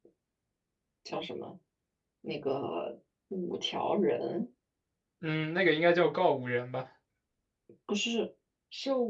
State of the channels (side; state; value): both; identical; correlation 1.00